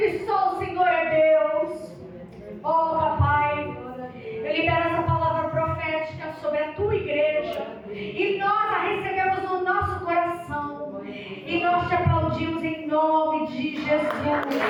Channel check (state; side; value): identical; both; correlation 1.00